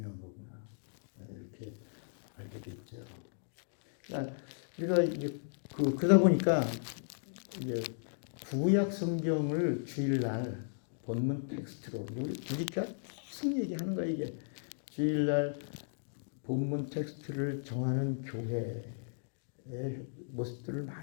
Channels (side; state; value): right; silent; digital silence